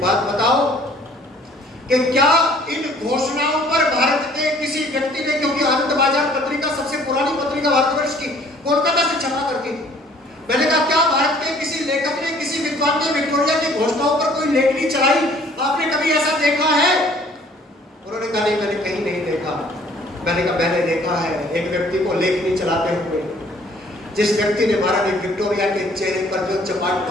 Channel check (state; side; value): normal; both; correlation 0.56